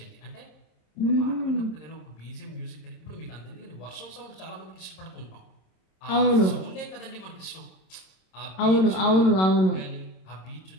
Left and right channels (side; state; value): right; late; 26 ms